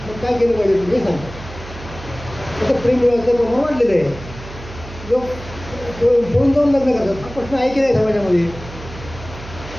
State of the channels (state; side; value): noise; right; hum, 14 dB below the sound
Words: मग काय केलं पाहिजे तुम्ही हे सांगतात. आता प्रेम विवाहाचं प्रमाण वाढलेलं आहे, लोक पळून जाऊन लग्न करतात. हा प्रश्न आहे की नाही समाजामध्ये?